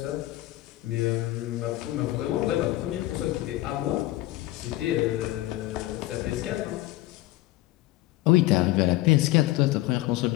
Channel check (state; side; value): quieter; right; 17.0 dB